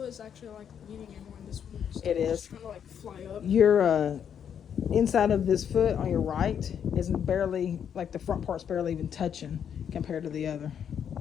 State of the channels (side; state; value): right; quieter; 8.3 dB